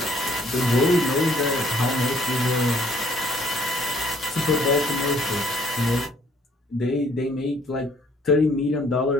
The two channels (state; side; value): normal; both; correlation 0.63